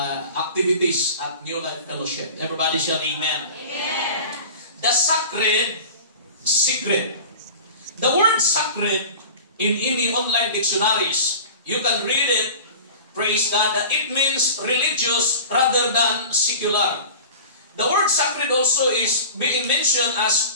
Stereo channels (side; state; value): both; inverted; correlation -0.37